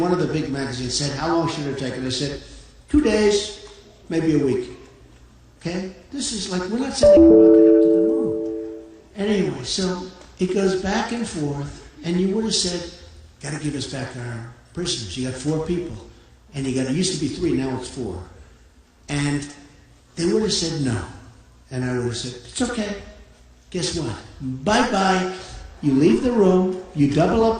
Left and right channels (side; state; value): both; identical; correlation 1.00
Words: one of the big magazines said, how long should it take? And I said, 2 days, maybe a week. Okay? This is like, we're not sending a rocket up to the moon. Anyway, so it goes back and forth, and you would have said, got to give us back our prisoners. You got 4 people. And it used to be 3, now it's 4. And they would have said no. And I would have said, it's okay. Guess what? Bye-bye. You leave the room, you double